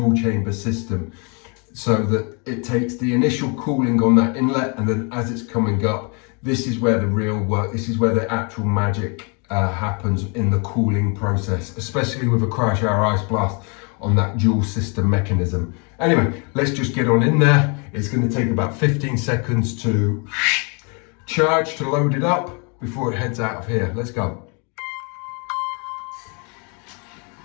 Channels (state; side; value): quieter; right; 34.3 dB